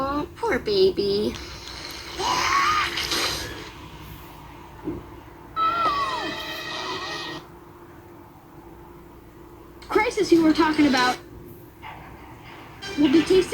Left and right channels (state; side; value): identical; both; correlation 1.00